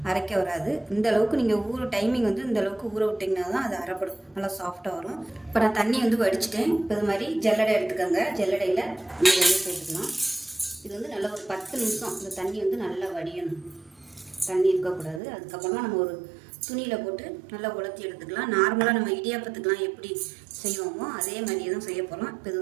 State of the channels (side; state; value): left; drops out; at 15.2 s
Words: அரைக்க வராது. இந்த அளவுக்கு நீங்கள் டைமிங் இந்த அளவுக்கு ஊற விட்டிங்கன்னா தான் அது அரைப்படும். நல்லா சாஃப்டாக வரும். இப்போ நான் தண்ணி வடிச்சிட்டேன். இப்போ இது மாதிரி ஜல்லடை எடுத்துக்கோங்க. ஜல்லடையில் நீங்கள் சேர்த்துக்கலாம். இது நல்லா ஒரு 10 நிமிஷம் இந்த தண்ணி நல்லா வடியணும். தண்ணி இருக்கக்கூடாது. அதுக்கப்புறமா நம்ம ஒரு துணியில் போட்டு நல்லா உலர்த்தி எடுத்துக்கலாம். நார்மலாக நம்ம இடியாப்பத்துக்கெலாம் எப்படி செய்வோமோ அதே மாதிரியே தான் செய்ய போகிறோம். இப்போ